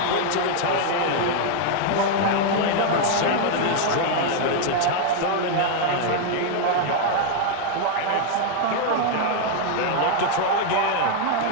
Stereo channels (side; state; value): both; different; correlation 0.00